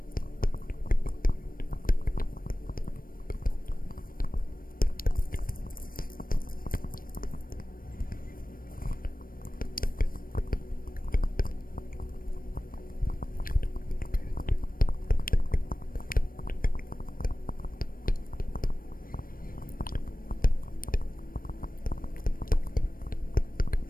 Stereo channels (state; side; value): late; right; 0.41 ms